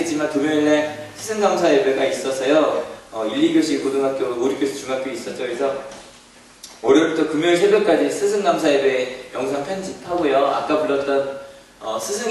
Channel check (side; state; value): both; identical; correlation 1.00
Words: 금요일날 스승감사 예배가 있어서요. 1, 2교시 고등학교, 5, 6교시 중학교 있었죠. 그래서 월요일부터 금요일 새벽까지 스승감사 예배 영상 편집하고요. 아까 불렀던